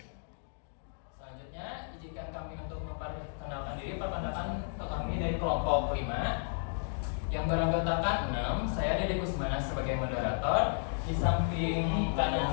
Selanjutnya, izinkan kami untuk memperkenalkan diri. Perkenalkan kami dari kelompok 5 yang beranggotakan 6. Saya Dede Kusmana sebagai moderator. Di samping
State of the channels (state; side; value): silent; right; digital silence